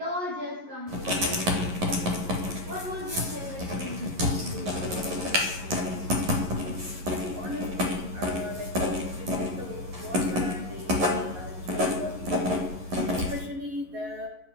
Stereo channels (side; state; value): left; late; 11 ms